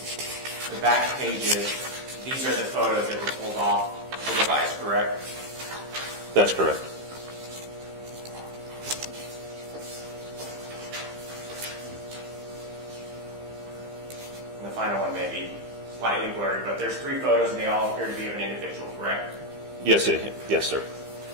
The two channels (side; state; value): left; late; 15 ms